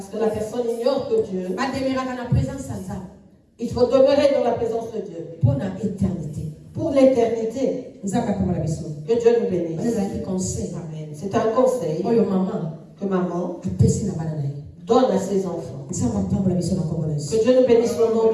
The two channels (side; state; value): both; identical; correlation 1.00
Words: que la personne ignore que Dieu Il faut demeurer dans la présence de Dieu. Pour l'éternité. Pour l'éternité. Que Dieu nous bénisse. Amen. C'est un conseil que maman donne à ses enfants. Que Dieu nous bénisse au nom